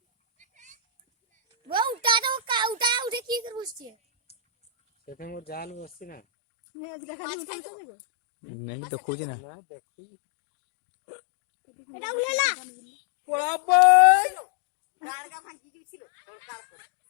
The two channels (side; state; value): right; drops out; at 6.2 s